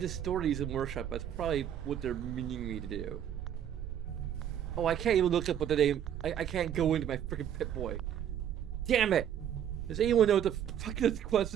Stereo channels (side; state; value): left; quieter; 9.8 dB